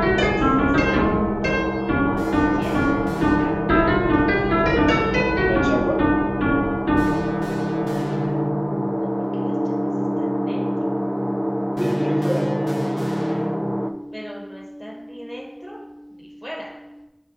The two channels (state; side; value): identical; both; correlation 1.00